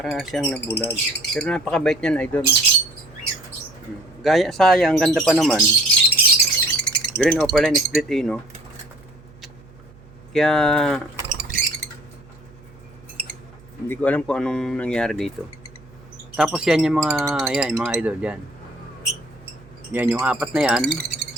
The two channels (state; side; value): noise; right; hum, 24 dB below the sound